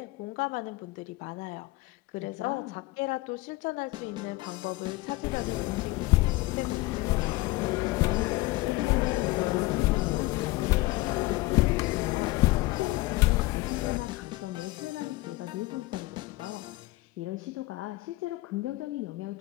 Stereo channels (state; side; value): quieter; right; 20.2 dB